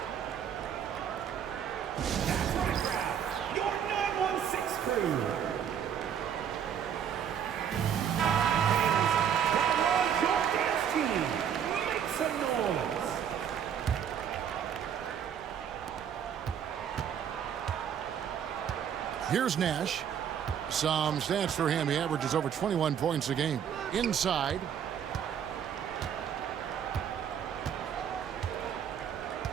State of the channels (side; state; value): left; quieter; 8.6 dB